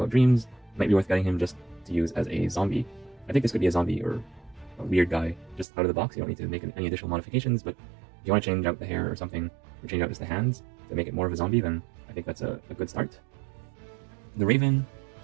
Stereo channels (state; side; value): drops out; left; at 5.7 s